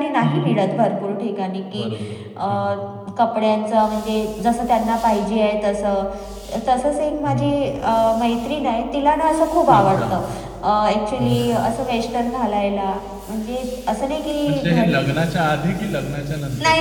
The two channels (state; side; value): identical; both; correlation 1.00